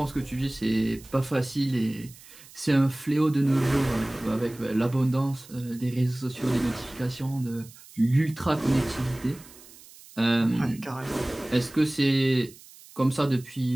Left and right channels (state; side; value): noise; right; hiss, 21 dB below the sound